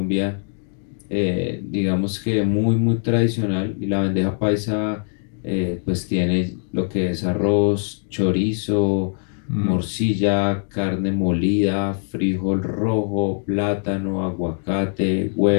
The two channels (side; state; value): right; silent; 64 dB below the other